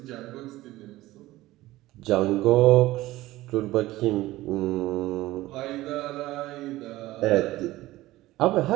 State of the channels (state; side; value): quieter; left; 17.2 dB